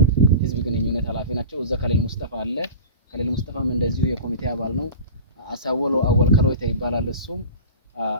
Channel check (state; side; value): inverted; both; correlation -0.34